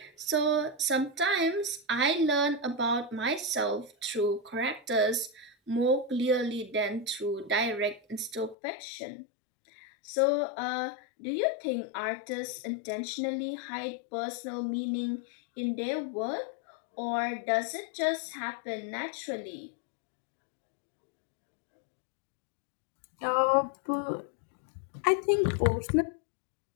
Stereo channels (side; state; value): right; drops out; at 8.6 s